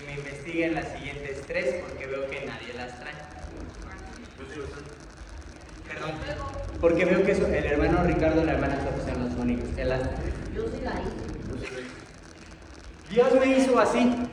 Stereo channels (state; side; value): identical; both; correlation 1.00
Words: me investiguen las siguientes 3 porque veo que nadie las trae. Perdón, porque veo que el hermano Ricardo y la hermana Sofía son los únicos que las traen. Yo sí la hice. Dios me hizo así.